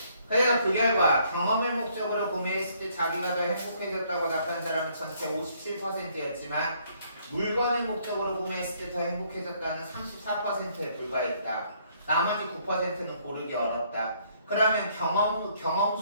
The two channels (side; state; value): both; inverted; correlation -0.66